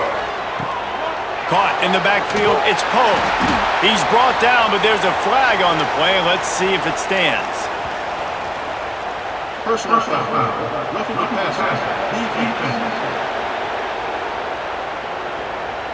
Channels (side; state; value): both; identical; correlation 1.00